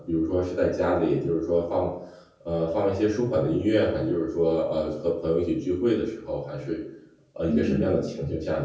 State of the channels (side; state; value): both; identical; correlation 1.00